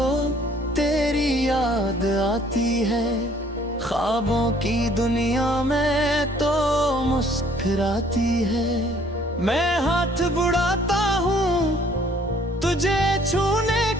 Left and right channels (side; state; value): both; normal; correlation 0.59